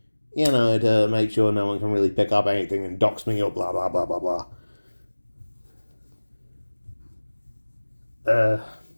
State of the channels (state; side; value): inverted; both; correlation -1.00